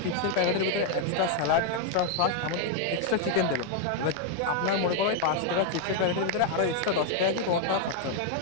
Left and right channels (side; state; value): both; different; correlation 0.00